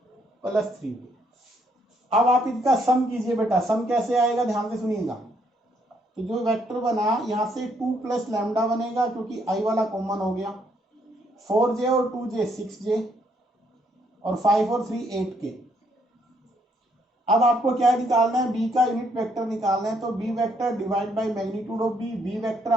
plus 3k। अब आप इनका सम कीजिए बेटा, सम कैसे आएगा ध्यान से सुनिएगा। तो जो वेक्टर बना यहाँ से 2 प्लस लैम्डा बनेगा क्योंकि आई वाला कॉमन हो गया, 4j और 2j 6j और 5 और 3 8k। अब आपको क्या निकालना है, बी का यूनिट वेक्टर निकालना है। तो B vector divide by magnitude of B. B vector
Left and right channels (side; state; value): both; normal; correlation 0.71